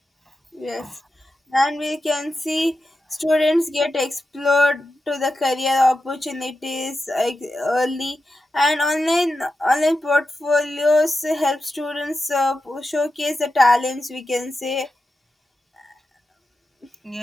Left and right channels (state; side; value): normal; both; correlation 0.90